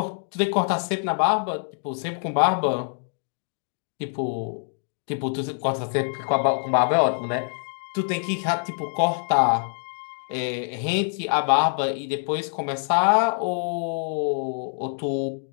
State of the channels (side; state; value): right; silent; digital silence